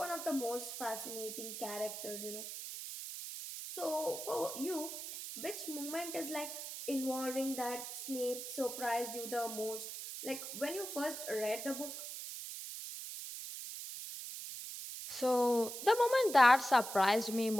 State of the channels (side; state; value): right; noise; hiss, 8 dB below the sound